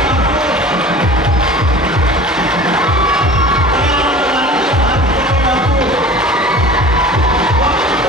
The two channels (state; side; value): normal; both; correlation 0.40